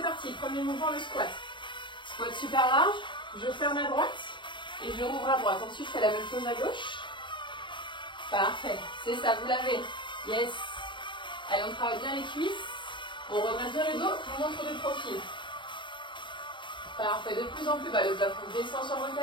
parti. Premier mouvement, le squat. Squat super large. Je ferme à droite et je rouvre à droite. Ensuite, je fais la même chose à gauche. Parfait. C'est ça, vous l'avez. Yes. Allez, on travaille bien les cuisses. On redresse bien le dos. On montre de profil. Parfait. De plus en plus bas. Le plafond descend sur vos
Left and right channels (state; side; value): late; right; 0.23 ms